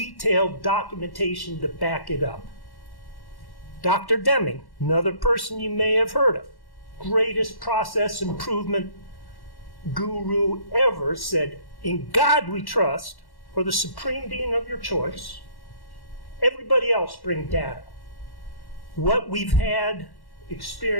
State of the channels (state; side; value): late; right; 1.1 ms